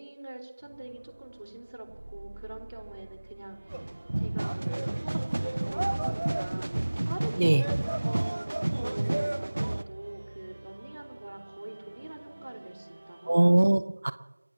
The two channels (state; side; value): inverted; both; correlation -1.00